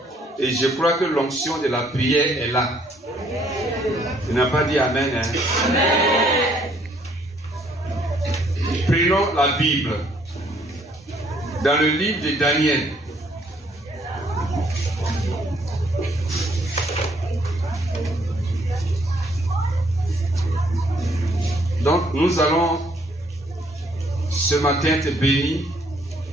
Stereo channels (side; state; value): both; normal; correlation 0.66